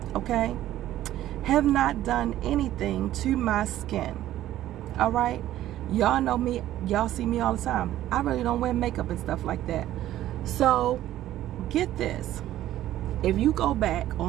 Okay? Have not done anything to my skin. All right? Y'all know me. Y'all see me all the time. I really don't wear makeup and stuff like that. So, get this. If you go back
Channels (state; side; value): quieter; left; 13.5 dB